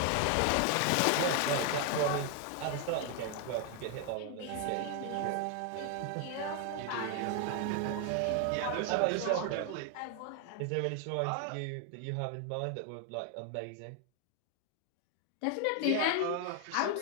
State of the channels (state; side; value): different; both; correlation 0.00